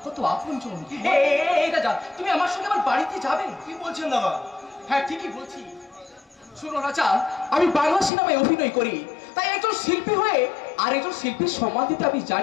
কত আপনজন। এই রাজা, তুমি আমার সঙ্গে আমার বাড়িতে যাবে? কি বলছেন দাদা? হ্যাঁ ঠিকই বলছি। শোনো রাজা, আমি বাংলা সিনেমায় অভিনয় করি, তাই একজন শিল্পী হয়ে আর একজন শিল্পীর সম্মান দিতে আমি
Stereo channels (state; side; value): drops out; right; at 8.1 s